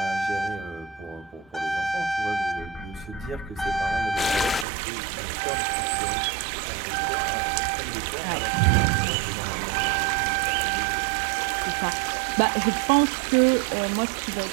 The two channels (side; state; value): left; drops out; at 4.7 s